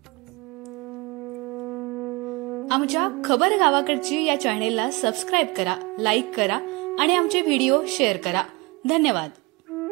आमच्या खबर गावाकडची या चॅनेलला सबस्क्राइब करा, लाईक करा आणि आमचे व्हिडिओ शेअर करा। धन्यवाद।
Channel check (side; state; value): left; quieter; 25.4 dB